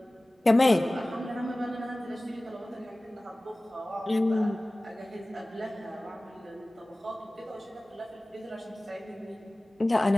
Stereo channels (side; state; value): both; normal; correlation 0.98